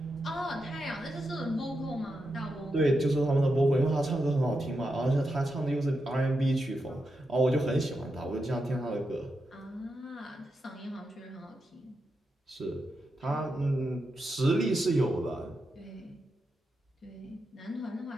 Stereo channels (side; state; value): both; normal; correlation 0.87